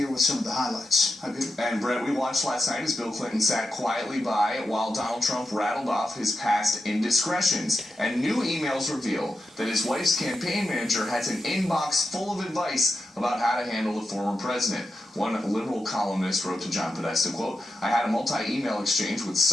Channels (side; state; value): both; normal; correlation 0.88